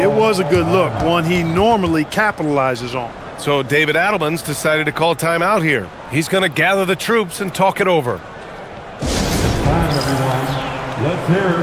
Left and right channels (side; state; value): both; identical; correlation 1.00